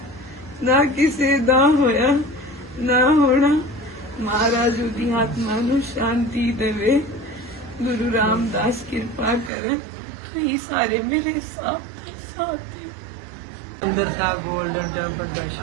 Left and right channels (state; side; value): drops out; left; at 9.5 s